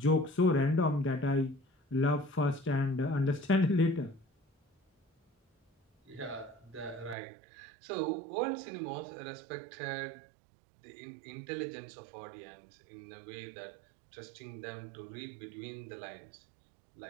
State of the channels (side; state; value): left; drops out; at 7.2 s